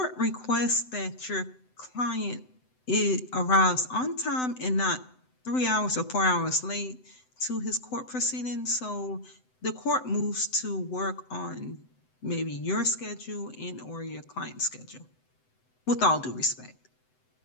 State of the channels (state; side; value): late; right; 7.9 ms